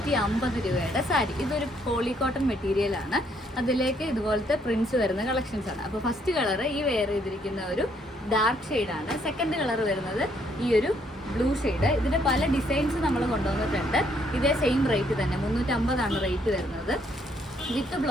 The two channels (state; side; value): normal; both; correlation 0.69